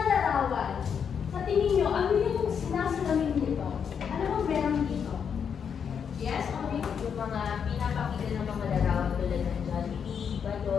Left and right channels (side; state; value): right; quieter; 7.2 dB